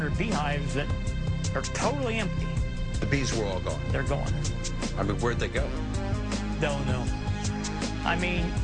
beehives that are totally empty. The bees were all gone. They're gone. I mean, where'd they go? Don't know. I mean,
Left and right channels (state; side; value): identical; both; correlation 1.00